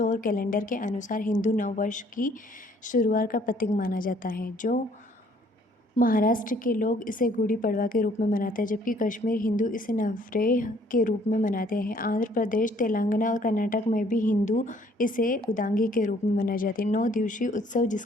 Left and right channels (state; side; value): normal; both; correlation 0.61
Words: कैलेंडर के अनुसार हिंदू नववर्ष की शुरुआत का प्रतीक माना जाता है। जो महाराष्ट्र के लोग इसे गुड़ी पड़वा के रूप में मनाते हैं, जबकि कश्मीर हिंदू इसे नवरेह के रूप में मनाते हैं। आंध्र प्रदेश, तेलंगाना और कर्नाटक में भी हिंदू इसे उदांगी के रूप में मनाए जाते हैं। 9 दिवसीय उत्सव,